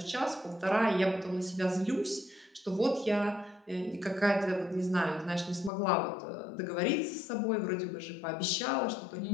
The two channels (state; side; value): drops out; right; at 5.7 s